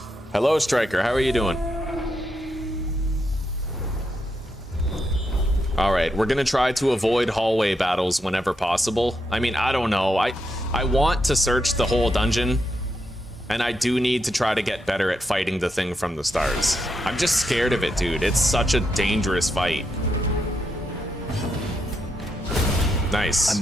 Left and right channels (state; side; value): normal; both; correlation 0.82